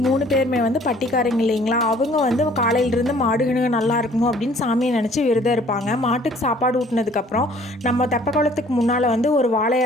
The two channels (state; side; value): normal; both; correlation 0.56